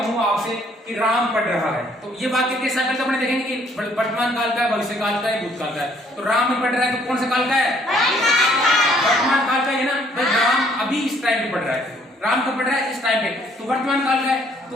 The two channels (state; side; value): normal; both; correlation 0.63